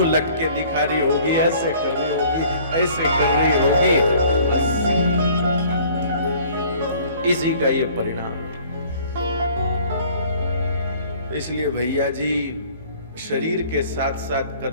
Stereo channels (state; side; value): inverted; both; correlation -0.53